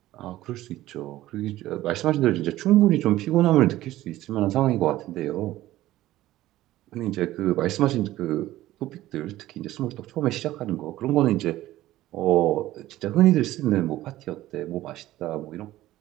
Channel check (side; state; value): left; quieter; 15.4 dB